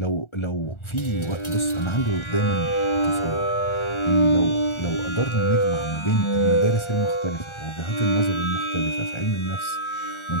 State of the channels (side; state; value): right; late; 1.4 ms